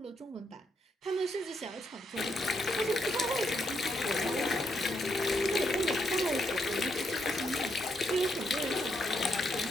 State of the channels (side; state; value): both; normal; correlation 0.78